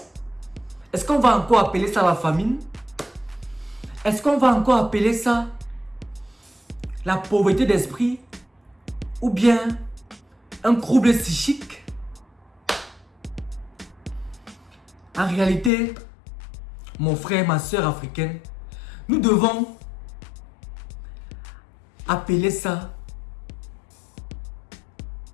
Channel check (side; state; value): right; drops out; at 15.7 s